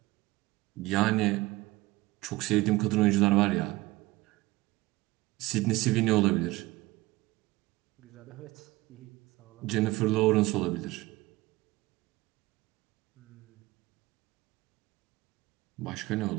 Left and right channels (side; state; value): left; quieter; 19.8 dB